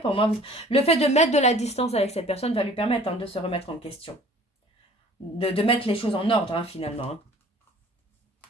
moi, le fait de mettre de la distance avec cette personne va lui permettre hein, de se remettre en question. De mettre les choses en ordre, hein, finalement. Hein.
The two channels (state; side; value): normal; both; correlation 0.50